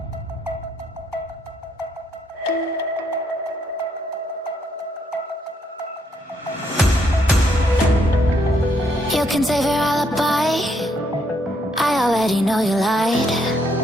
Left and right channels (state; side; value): normal; both; correlation 0.73